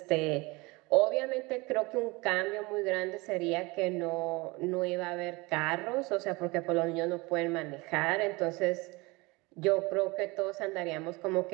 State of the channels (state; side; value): quieter; left; 24.5 dB